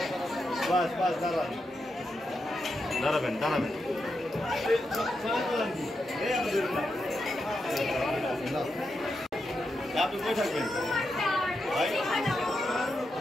বাস বাস দাঁড়ান দাঁড়াবেন আপনি কই থাকবেন ভাই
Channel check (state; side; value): normal; both; correlation 0.86